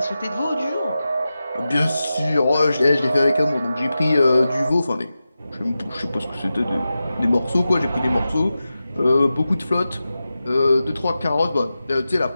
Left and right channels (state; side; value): inverted; both; correlation -0.93